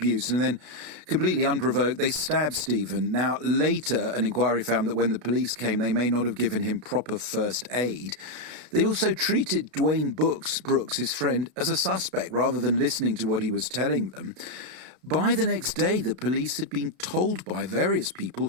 and then, completely unprovoked, they stabbed Stephen. Now, later, an inquiry found that when the police came, they may not have given him proper first aid. They also treated Dwayne Brooks, his friend, as a suspect rather than listening to what he was telling them. By the next day, the police had been told by various people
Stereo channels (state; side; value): late; left; 33 ms